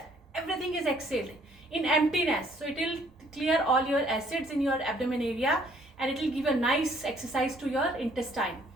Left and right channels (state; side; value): normal; both; correlation 0.62